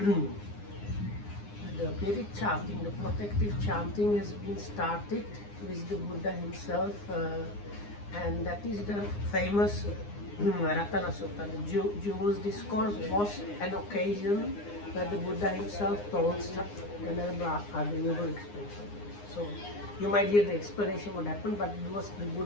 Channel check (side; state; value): right; late; 9.8 ms